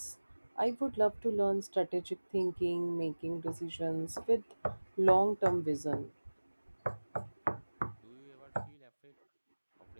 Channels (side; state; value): both; inverted; correlation -1.00